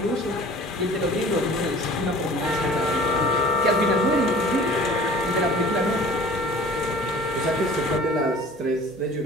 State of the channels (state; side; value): normal; both; correlation 0.46